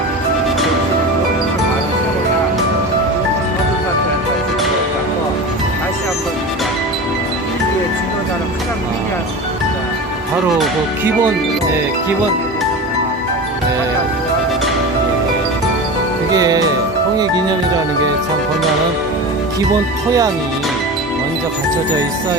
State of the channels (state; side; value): normal; both; correlation 0.29